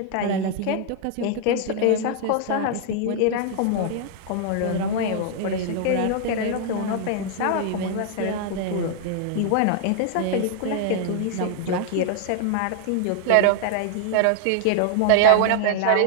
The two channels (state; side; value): different; both; correlation -0.01